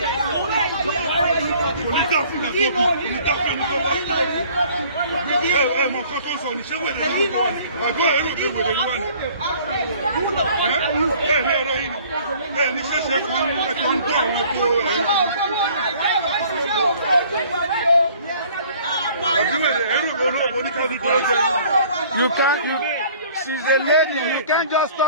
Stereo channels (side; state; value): both; inverted; correlation -0.53